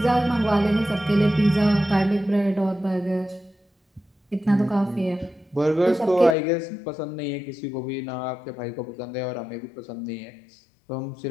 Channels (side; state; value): right; drops out; at 6.4 s